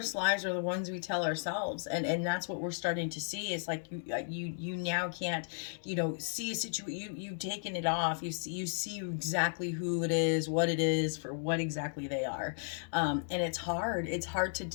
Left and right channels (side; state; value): right; silent; digital silence